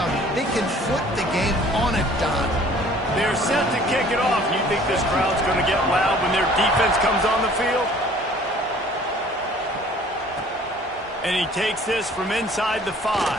They can flip the game on a dime. They're set to kick it off. You think this crowd's going to get loud when their defense comes on the field? And he takes this from inside the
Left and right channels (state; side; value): normal; both; correlation 0.53